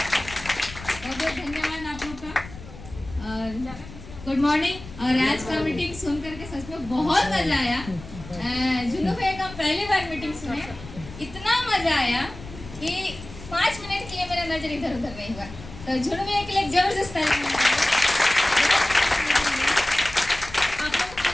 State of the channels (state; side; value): noise; left; rumble, 15 dB below the sound